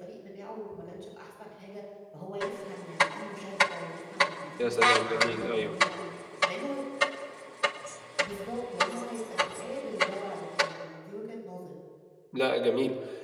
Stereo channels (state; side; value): identical; both; correlation 1.00